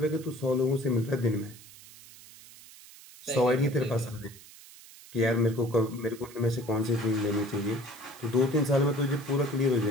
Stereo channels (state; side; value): noise; right; hiss, 20 dB below the sound